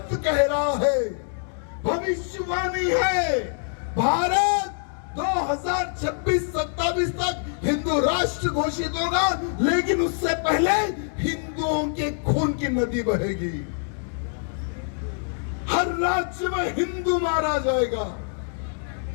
कह रहा है, भविष्यवाणी है। भारत 2026-27 तक हिंदू राष्ट्र घोषित होगा, लेकिन उससे पहले हिंदुओं के खून की नदी बहेगी। हर राज्य में हिंदू मारा जाएगा।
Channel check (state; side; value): silent; right; 62 dB below the other